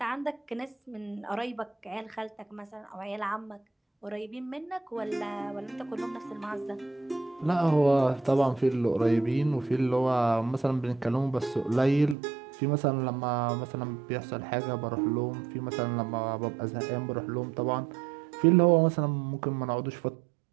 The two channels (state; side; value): drops out; left; at 12.2 s